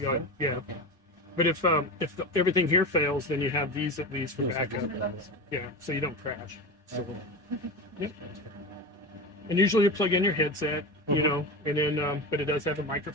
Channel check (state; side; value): normal; both; correlation 0.24